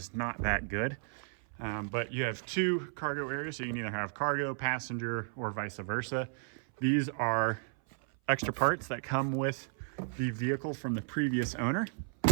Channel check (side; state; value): left; silent; 55 dB below the other